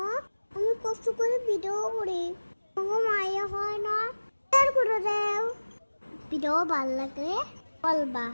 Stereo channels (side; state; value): both; inverted; correlation -1.00